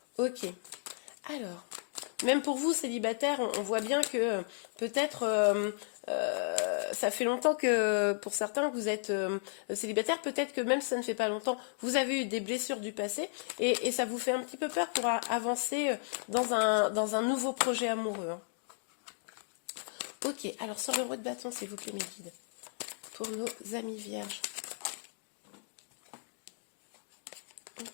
Ok, alors, même pour vous célibataires, on voit bien que peut-être ça fait longtemps que pour certains vous êtes célibataire, peut-être que même si ça ne fait pas longtemps, vous avez eu des blessures du passé et ça vous fait un petit peu peur pour avancer dans un nouveau projet amoureux, hein. Ok, alors sur le roi de bâton, s'il vous plaît mes guides, pour nos amis vierges.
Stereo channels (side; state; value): right; silent; digital silence